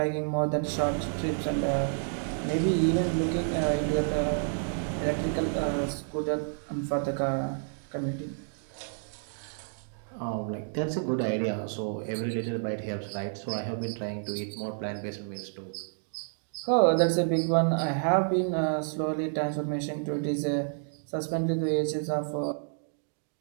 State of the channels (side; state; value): left; silent; digital silence